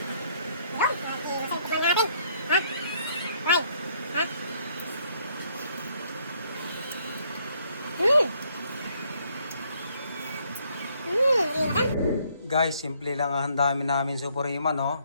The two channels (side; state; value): both; inverted; correlation -0.67